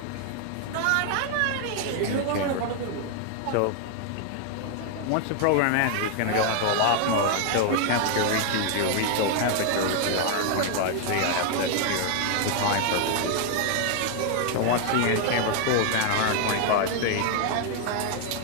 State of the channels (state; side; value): different; both; correlation 0.00